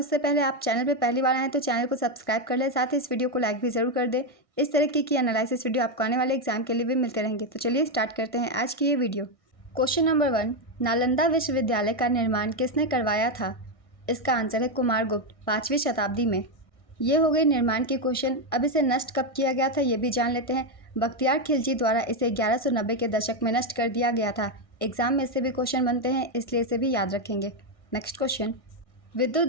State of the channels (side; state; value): right; late; 1.6 ms